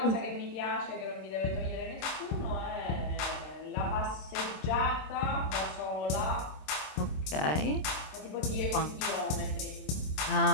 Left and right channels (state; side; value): late; right; 26 ms